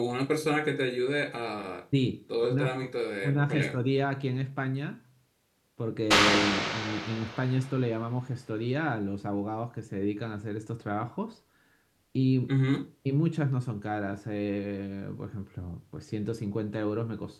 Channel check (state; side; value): identical; both; correlation 1.00